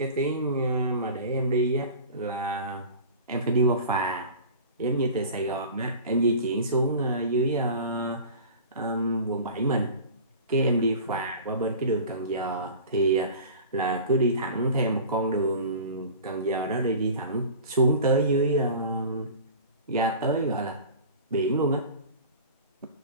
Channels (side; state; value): both; inverted; correlation -0.38